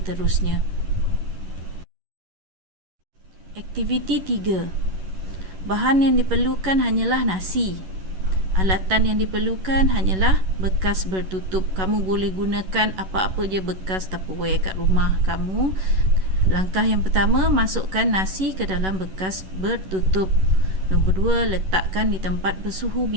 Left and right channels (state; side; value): late; left; 11 ms